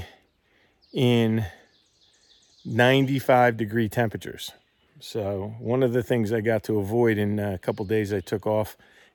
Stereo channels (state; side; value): identical; both; correlation 1.00